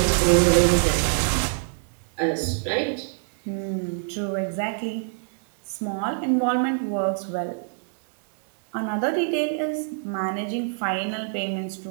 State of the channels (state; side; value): silent; left; digital silence